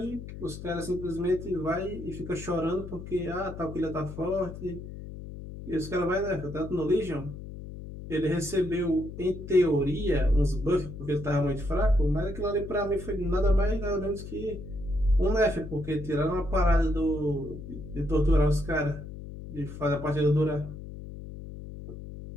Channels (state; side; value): noise; left; hum, 11 dB below the sound